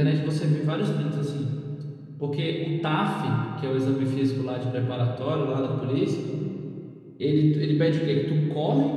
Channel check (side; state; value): both; identical; correlation 1.00